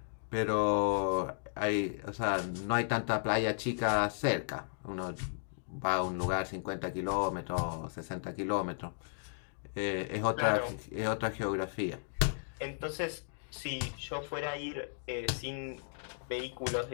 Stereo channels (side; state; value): right; silent; digital silence